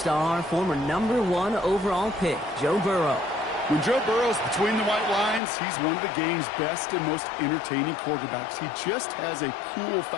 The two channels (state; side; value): drops out; right; at 5.4 s